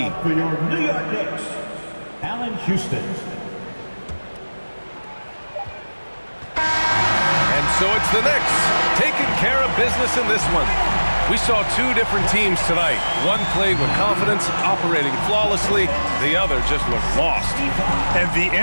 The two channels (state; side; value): inverted; both; correlation -1.00